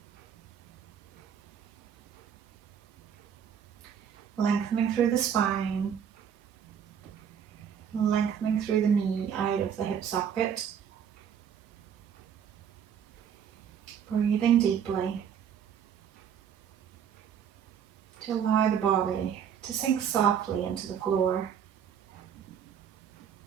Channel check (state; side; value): quieter; left; 8.2 dB